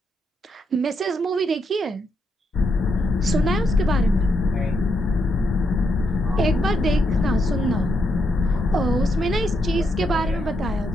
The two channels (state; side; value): normal; both; correlation 0.80